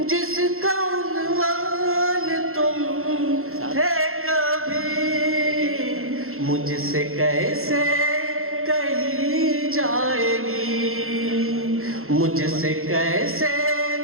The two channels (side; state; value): left; late; 0.62 ms